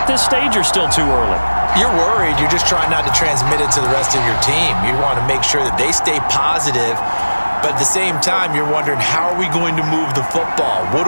this stage or still too early? You're worried. You're just trying not to transmit it to the rest of your team. You want to make sure that they stay positive. But at the same time, you're wondering, how are we going to move the football? What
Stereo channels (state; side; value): inverted; both; correlation -1.00